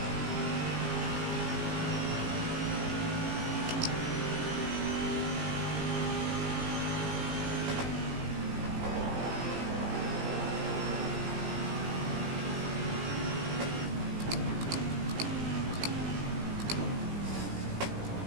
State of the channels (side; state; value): left; late; 17 ms